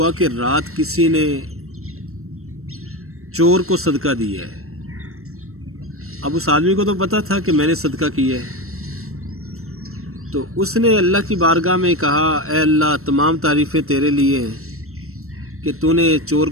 کہ رات کسی نے چور کو صدقہ دیا ہے۔ اب اس آدمی کو تو پتہ تھا کہ میں نے صدقہ کیا ہے، تو اس نے اللہ کی بارگاہ میں کہا، اے اللہ، تمام تعریفیں تیرے لیے ہیں کہ تو نے چور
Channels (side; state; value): left; late; 0.63 ms